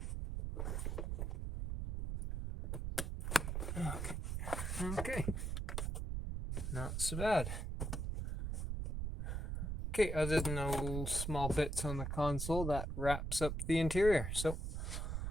Okay, not so bad. Okay, other than those small bits on the console, that wraps up the interior. So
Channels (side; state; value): right; noise; rumble, 2 dB below the sound